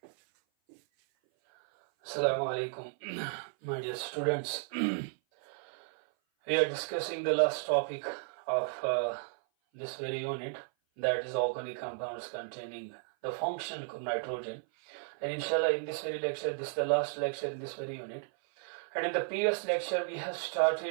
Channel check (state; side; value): silent; left; 55 dB below the other